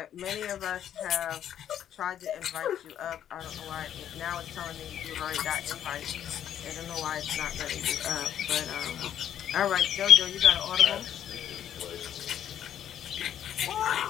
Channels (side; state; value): right; quieter; 10.2 dB